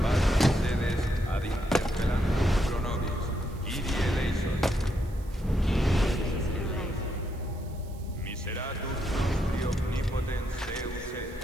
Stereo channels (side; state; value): right; noise; hiss, 25 dB below the sound